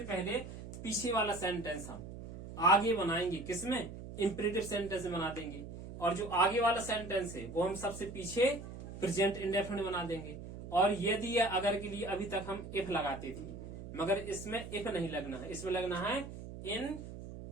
पहले पीछे वाला सेंटेंस हम आगे बनाएंगे, किसमें? इंपरेटिव सेंटेंस में बना देंगे। और जो आगे वाला सेंटेंस है वो हम सबसे पीछे प्रेजेंट इंडेफिनिट बना देंगे। और यदि या अगर के लिए अभी तक हम इफ लगाते थे, मगर इसमें इफ नहीं लगना है, इसमें लगना है इन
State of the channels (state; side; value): noise; right; hum, 11 dB below the sound